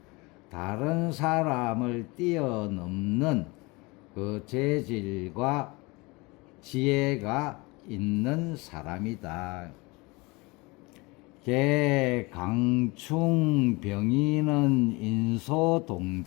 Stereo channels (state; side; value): quieter; right; 25.2 dB